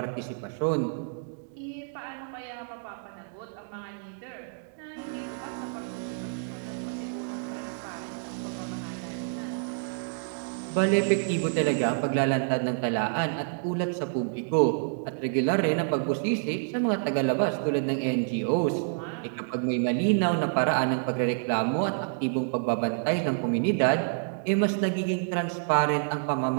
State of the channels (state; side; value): silent; left; digital silence